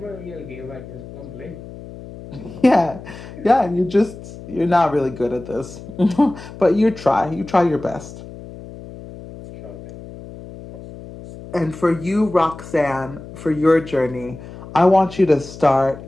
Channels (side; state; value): left; noise; hum, 15 dB below the sound